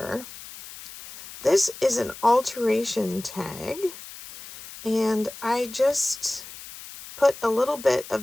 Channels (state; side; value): noise; left; hiss, 15 dB below the sound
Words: This is an alteration tag, and I just put a little bit